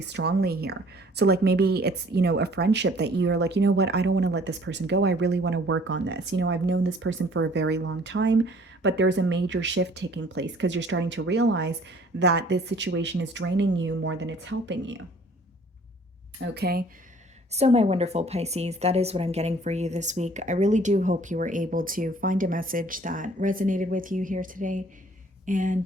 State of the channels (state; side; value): normal; both; correlation 0.55